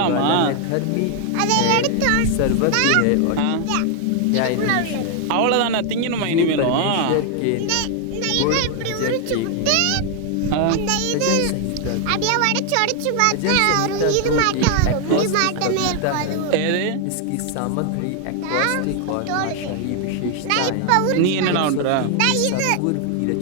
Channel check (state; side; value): different; both; correlation 0.00